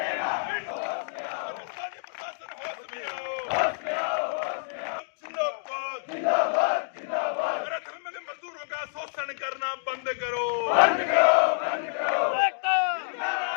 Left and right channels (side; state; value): right; silent; digital silence